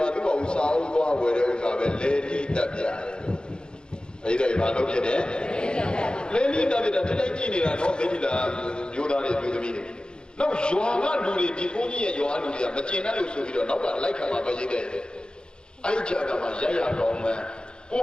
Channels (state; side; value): late; right; 0.049 ms